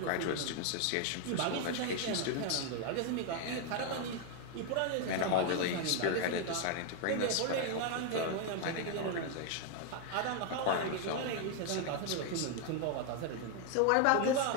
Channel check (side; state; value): both; different; correlation 0.01